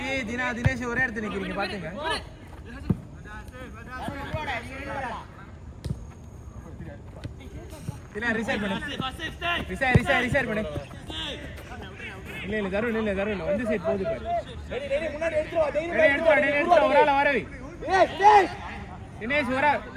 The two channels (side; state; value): both; identical; correlation 1.00